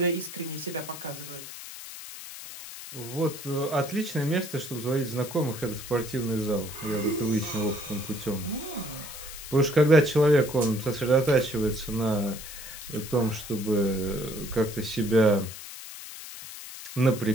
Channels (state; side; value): noise; left; hiss, 12 dB below the sound